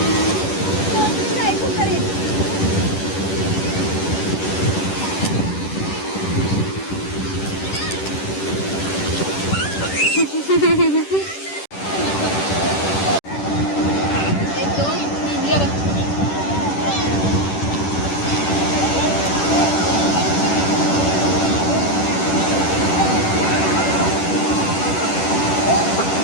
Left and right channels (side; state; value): right; late; 10 ms